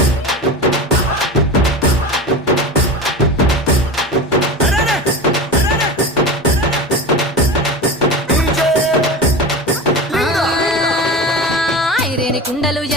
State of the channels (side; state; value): both; normal; correlation 0.28